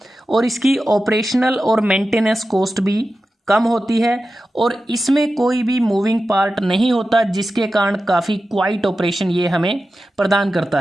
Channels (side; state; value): both; normal; correlation 0.93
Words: और इसकी ऑपरेशनल और मेंटेनेंस कॉस्ट भी कम होती है, और इसमें कोई भी मूविंग पार्ट नहीं होता, जिसके कारण काफ़ी क्वाइट ऑपरेशन ये हमें प्रदान करता